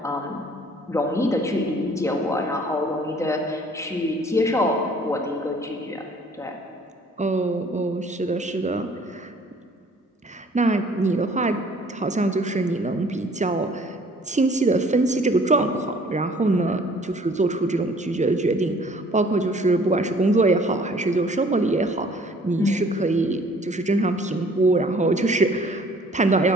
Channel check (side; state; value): both; normal; correlation 0.55